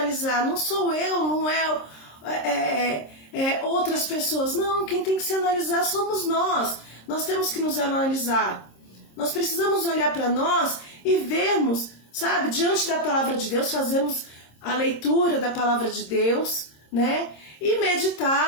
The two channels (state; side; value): late; right; 26 ms